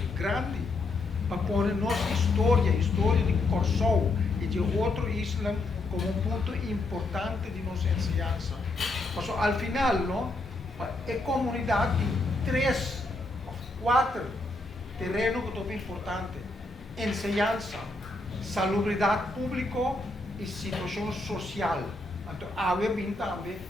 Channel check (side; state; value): right; quieter; 3.1 dB